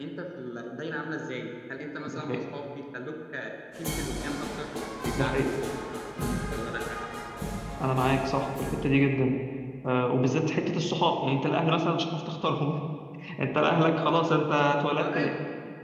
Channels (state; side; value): identical; both; correlation 1.00